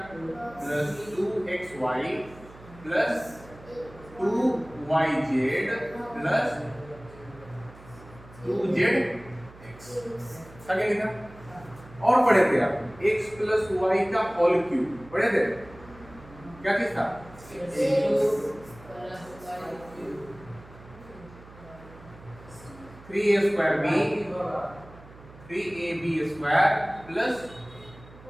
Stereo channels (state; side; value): noise; right; hum, 20 dB below the sound